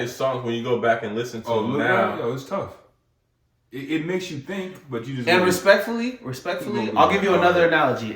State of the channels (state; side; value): identical; both; correlation 1.00